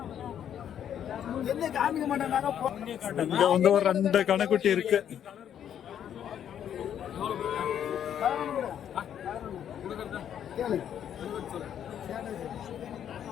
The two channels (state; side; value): quieter; right; 9.6 dB